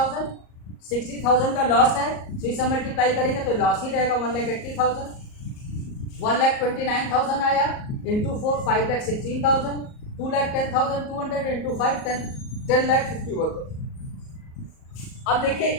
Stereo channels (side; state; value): right; late; 38 ms